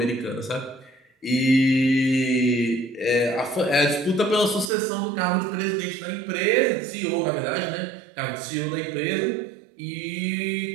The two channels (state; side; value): drops out; left; at 4.7 s